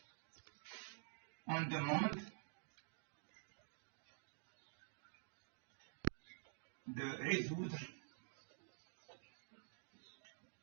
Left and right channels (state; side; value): silent; left; digital silence